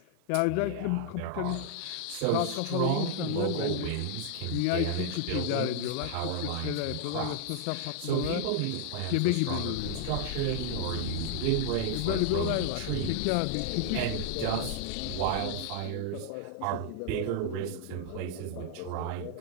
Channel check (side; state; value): both; different; correlation -0.01